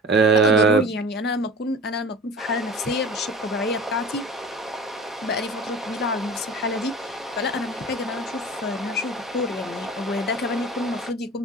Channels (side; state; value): both; normal; correlation 0.39